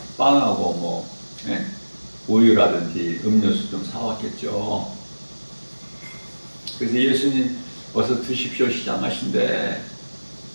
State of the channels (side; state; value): both; inverted; correlation -1.00